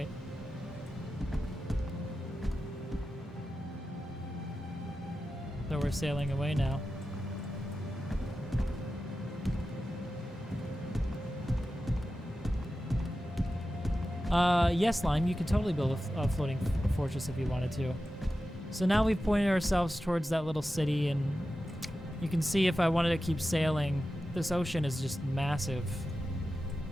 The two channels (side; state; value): both; normal; correlation 0.93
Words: So we're sailing away now. Yes, Lime, you could totally build a floating fortress if you wanted to. So now we've pointed ourselves towards that little city, and you can see if I wanted to keep sailing, this ocean is just massive.